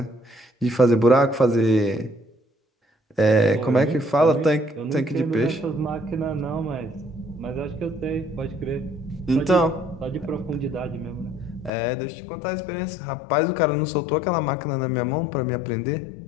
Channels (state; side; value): drops out; right; at 11.7 s